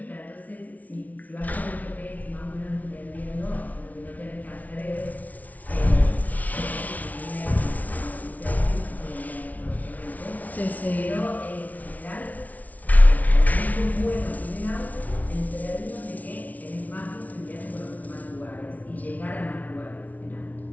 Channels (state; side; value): late; right; 0.073 ms